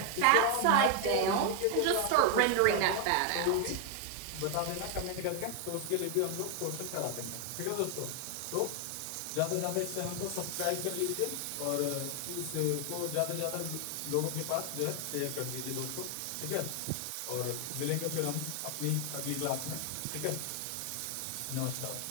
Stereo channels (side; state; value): both; different; correlation 0.00